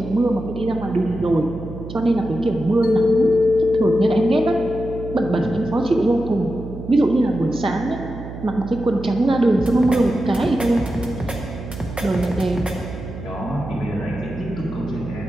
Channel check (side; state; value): right; noise; hum, 11 dB below the sound